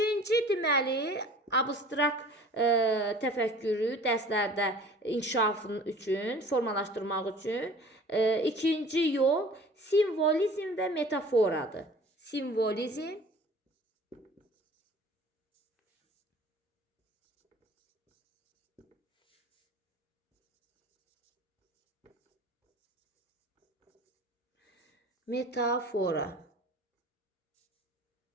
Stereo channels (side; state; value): both; normal; correlation 0.46